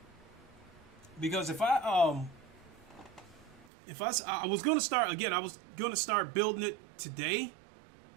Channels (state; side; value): drops out; left; at 3.7 s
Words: Because if I was gonna start again, I was gonna start building it today,